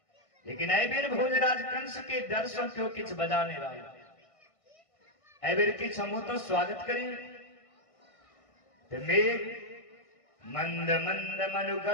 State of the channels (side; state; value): right; late; 1.5 ms